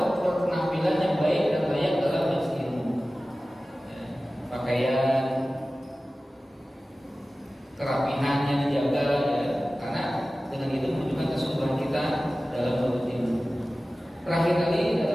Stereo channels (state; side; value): normal; both; correlation 0.96